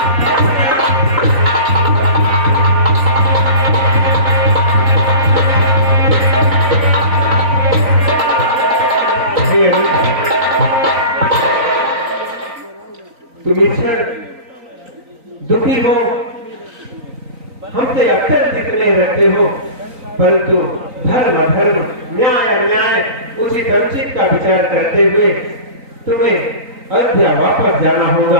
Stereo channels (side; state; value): left; late; 3.9 ms